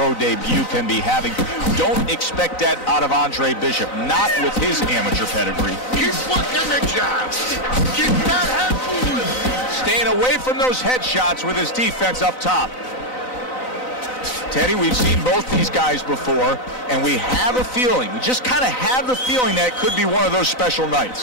debut can be having. Don't expect that out of Andre Bishop, not with his amateur pedigree. keep working the job. Keep that head moving. Staying away from those headshots with his defense up top. Teddy, we've seen both these guys before, and we have a feeling, we just kind of have the feeling that it could be one of those special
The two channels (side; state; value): right; late; 3.9 ms